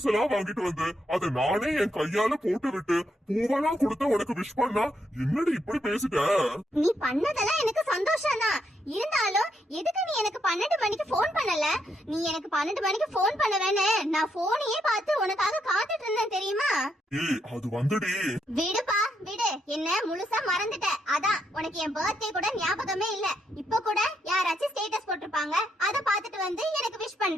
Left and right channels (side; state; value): both; normal; correlation 0.78